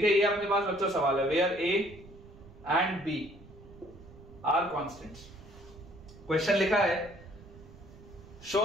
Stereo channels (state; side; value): noise; right; rumble, 20 dB below the sound